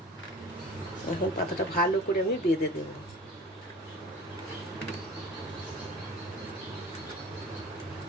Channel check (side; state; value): both; normal; correlation 0.40